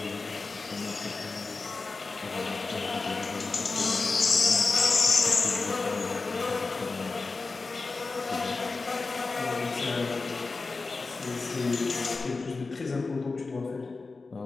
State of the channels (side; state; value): right; quieter; 3.9 dB